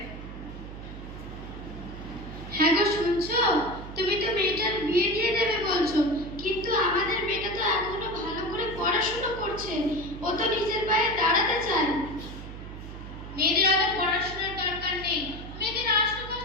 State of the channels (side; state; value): right; noise; hum, 11 dB below the sound